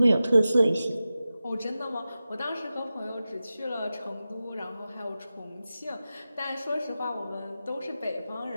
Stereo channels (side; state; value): both; inverted; correlation -0.94